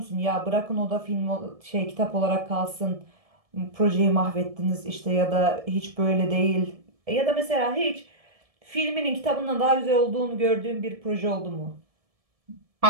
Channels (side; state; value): left; late; 1.7 ms